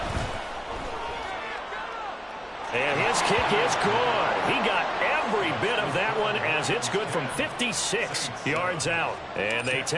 And his kick is good. He got every bit of that one as it's good from 56 yards out. And they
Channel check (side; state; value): both; identical; correlation 1.00